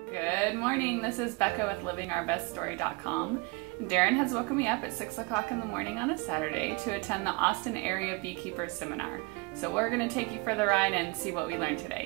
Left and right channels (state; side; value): quieter; left; 27.4 dB